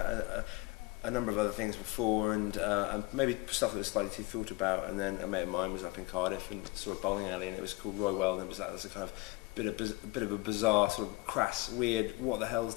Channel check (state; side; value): quieter; right; 22.2 dB